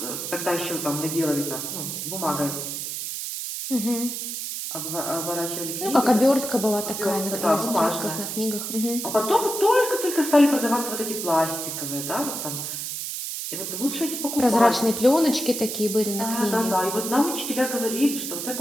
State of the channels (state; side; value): noise; right; hiss, 5 dB below the sound